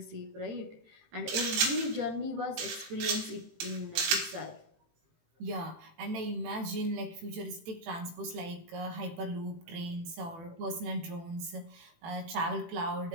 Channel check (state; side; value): late; left; 18 ms